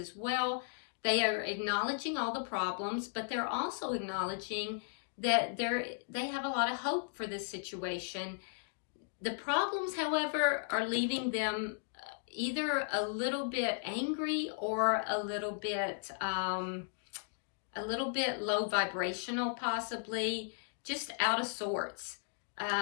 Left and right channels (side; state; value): right; silent; digital silence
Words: well. They are acknowledging all the problems, but they're also acknowledging that they have a lot of hope for this situation. The problems, however, are leaving them either a little bit angry or a little bit low vibrational, possibly just out of sorts.